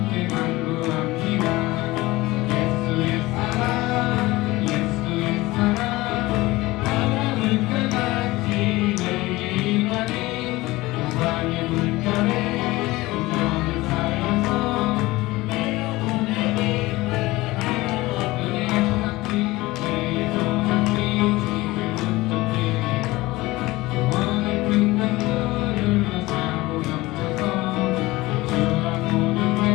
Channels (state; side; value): quieter; right; 19.8 dB